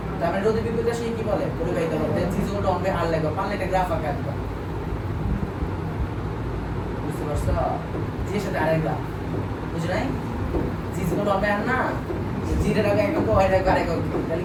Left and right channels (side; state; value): both; identical; correlation 1.00